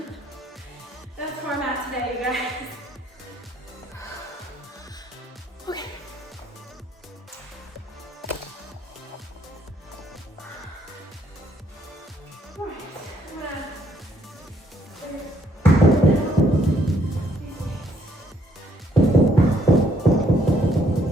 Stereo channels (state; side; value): normal; both; correlation 0.69